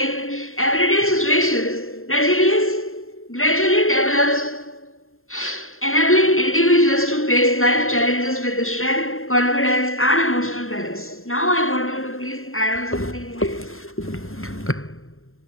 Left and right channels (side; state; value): right; late; 0.61 ms